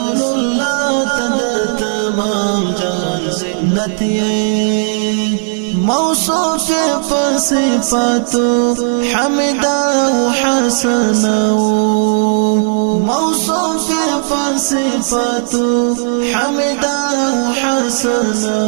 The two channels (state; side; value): silent; left; digital silence